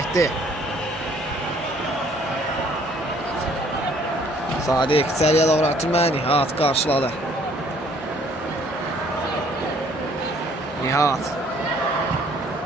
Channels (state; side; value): normal; both; correlation 0.60